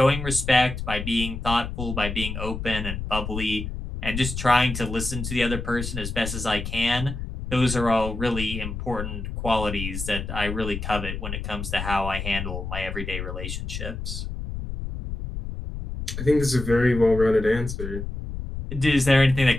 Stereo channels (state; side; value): noise; left; rumble, 6 dB below the sound